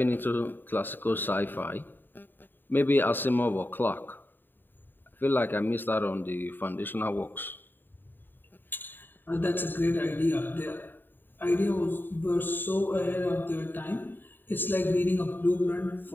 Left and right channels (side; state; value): right; late; 0.093 ms